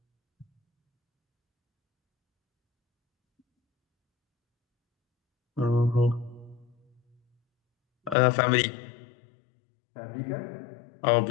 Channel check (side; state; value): right; drops out; at 8.2 s